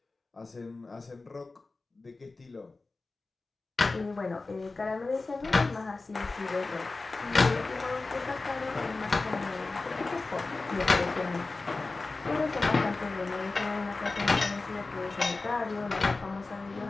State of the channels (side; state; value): right; quieter; 3.6 dB